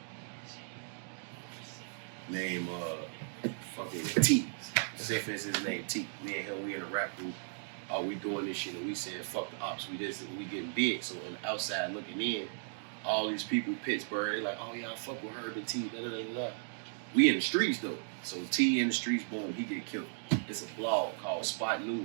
fucking T. Say for instance, his name T. Me and him, we in a rap group. We doing this shit and we saying fuck the ops. We getting big. So on the outside looking in, all these people, Pittsburgh, they like, oh yeah, I fuck with Herb and T, da da da da. We in the streets though. So T in the streets, boom, he get killed. It's a blog called Spot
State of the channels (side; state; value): left; silent; digital silence